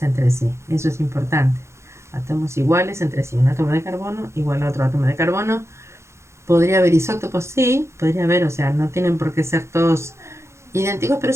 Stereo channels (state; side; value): late; left; 0.13 ms